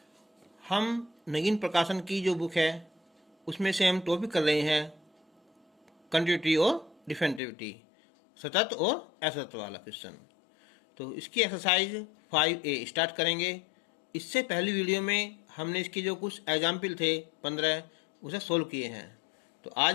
हम नगीन प्रकाशन की जो बुक है उसमें से हम टॉपिक कर रहे हैं कंटिन्यूटी और डिफरेंटिविटी, सतत और असतत वाला क्वेश्चन। तो इसकी एक्सरसाइज 5A स्टार्ट करेंगे। इससे पहली वीडियो में हमने इसके जो कुछ एग्जाम्पल थे 15 उसे सोल्व किए हैं। तो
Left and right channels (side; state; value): right; drops out; at 7.4 s